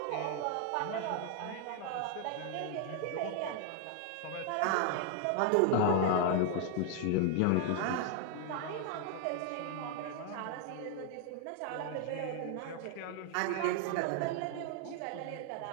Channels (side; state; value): both; different; correlation 0.00